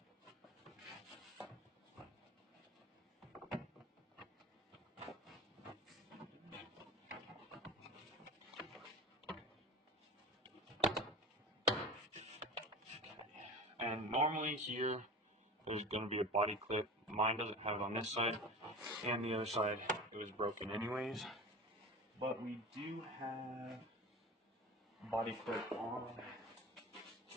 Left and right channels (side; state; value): both; normal; correlation 0.34